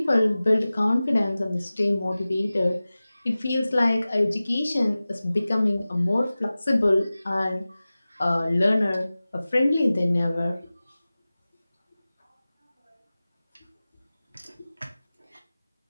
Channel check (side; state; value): both; inverted; correlation -0.97